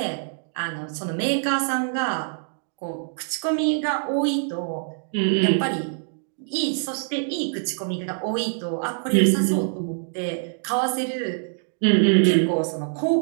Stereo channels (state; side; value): silent; left; digital silence